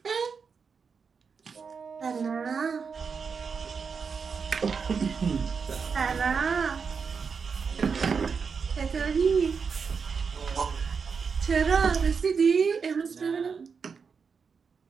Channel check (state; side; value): quieter; left; 5.7 dB